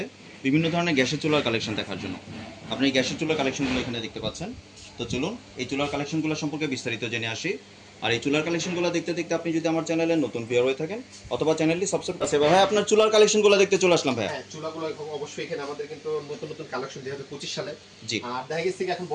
বিভিন্ন ধরনের গ্যাসের চুলার কালেকশন দেখার জন্য। আপনি এই গ্যাসের চুলার কালেকশনগুলো এখানে দেখতে পাচ্ছেন। তো চলুন এই চুলার কালেকশনগুলো সম্পর্কে বিস্তারিত জেনে আসি। আর এই চুলার কালেকশনগুলো দেখতে দেখতে আপনি যদি আমার চ্যানেলে নতুন ভিউয়ার হয়ে থাকেন অথবা চ্যানেলটি সাবস্ক্রাইব আছে ভাই, আপনার চুলার কালেকশনগুলো দেখতে চলে আসলাম ভাই। হ্যাঁ, চুলাগুলো অবশ্যই এখানে আমাদের কিন্তু নতুন নতুন কালেকশন 2025 সালে। জি। আর দেখা গেছে এখন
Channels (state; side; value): identical; both; correlation 1.00